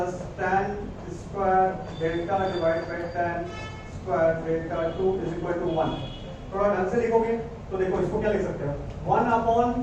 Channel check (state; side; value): identical; both; correlation 1.00